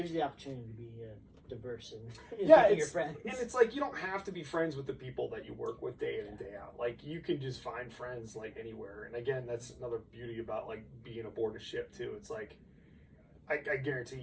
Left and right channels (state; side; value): identical; both; correlation 1.00